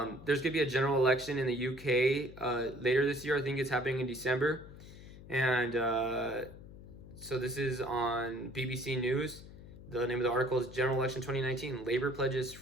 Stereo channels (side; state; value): left; noise; hum, 16 dB below the sound